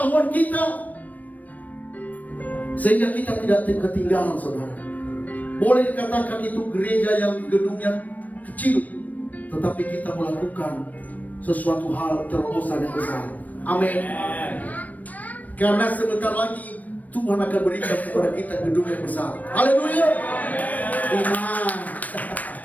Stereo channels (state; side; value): late; right; 0.076 ms